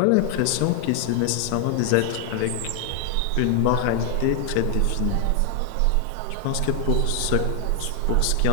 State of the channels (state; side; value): different; both; correlation 0.00